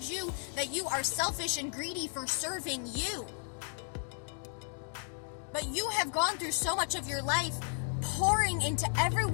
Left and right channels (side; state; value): right; silent; 55 dB below the other